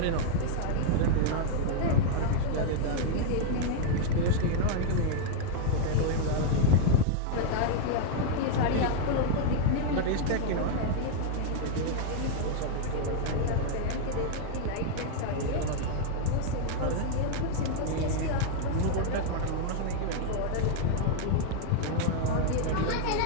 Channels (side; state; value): both; different; correlation -0.01